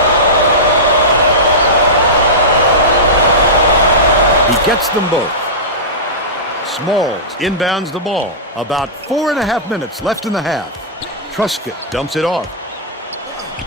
He gets them both. Smalls inbounds the ball. About 4.5 minutes left in the half. Truscott dumps it off.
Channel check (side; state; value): both; normal; correlation -0.16